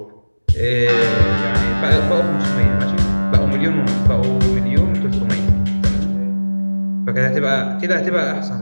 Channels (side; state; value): both; inverted; correlation -1.00